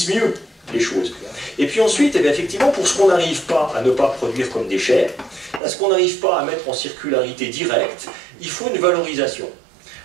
mieux les choses? Et puis ensuite, eh bien, effectivement, pour ce qu'on n'arrive pas à ne pas produire comme déchets, à ce qu'on n'arrive pas à mettre en circularité directe, il faut une valorisation.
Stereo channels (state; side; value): drops out; left; at 5.6 s